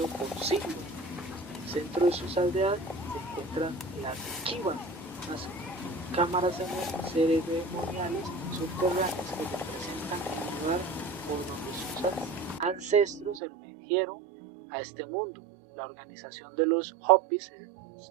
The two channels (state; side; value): drops out; left; at 13.4 s